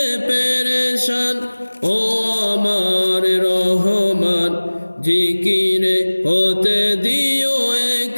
পেরেশান ও আমার রহমান। জিকিরে হতে দিও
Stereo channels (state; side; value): inverted; both; correlation -1.00